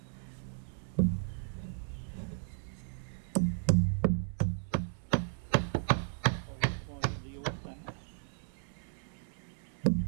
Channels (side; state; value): left; silent; digital silence